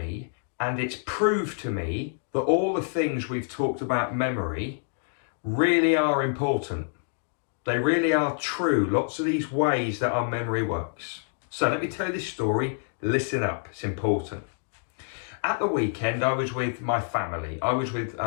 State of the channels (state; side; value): silent; right; digital silence